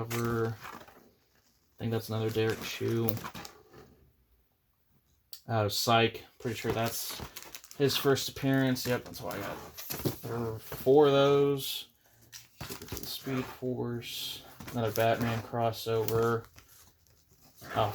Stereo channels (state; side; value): identical; both; correlation 1.00